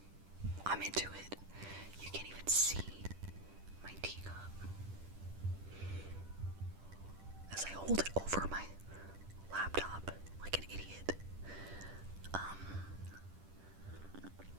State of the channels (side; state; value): left; late; 10 ms